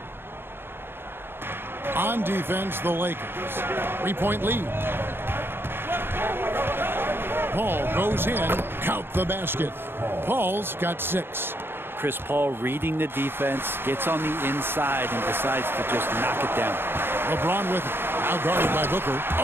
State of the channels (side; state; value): left; late; 0.11 ms